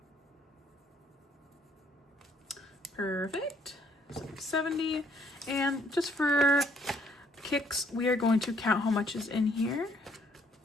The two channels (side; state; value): both; normal; correlation 0.66